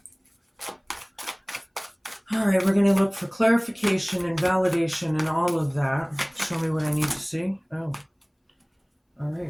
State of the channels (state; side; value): identical; both; correlation 1.00